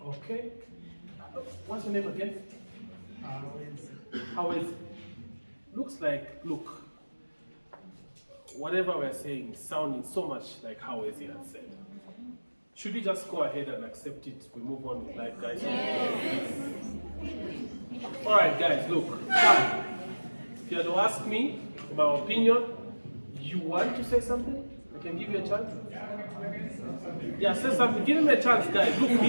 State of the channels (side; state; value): both; inverted; correlation -1.00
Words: Okay. What's your name again? How is it? Looks like, look, whatever we're saying is sounding so much like how Ezi had said. Should we just go ahead and accept it? We move on with life, guys? Yes. All right, guys, look. If you had to ask me my opinion, you want to say something? I can give you a chance. Yeah, say something. Give him a chance, guys. Look,